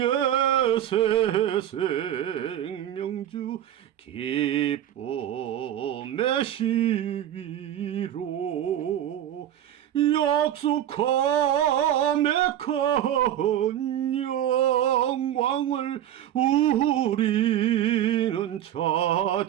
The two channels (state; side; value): quieter; left; 11.4 dB